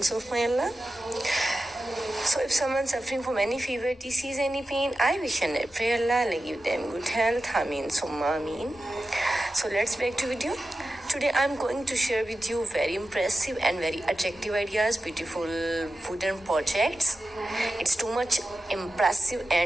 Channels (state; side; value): normal; both; correlation 0.93